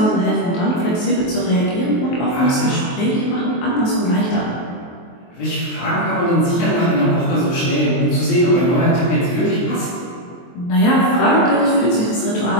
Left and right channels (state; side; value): late; right; 23 ms